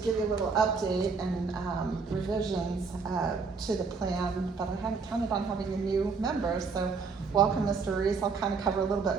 you a little update and revisions to the plan, but I hadn't counted on having a new member, so welcome, Mr. Reese. I'll kind of cover a little bit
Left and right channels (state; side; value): quieter; left; 4.9 dB